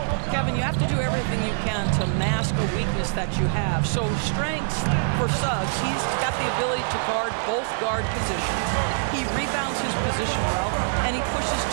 Kevin, you have to do everything you can to mask a weakness that you have. So strengths for Suggs, he's got the ability to guard both guard positions. He rebounds his position well, and he pushes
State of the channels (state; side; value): silent; left; digital silence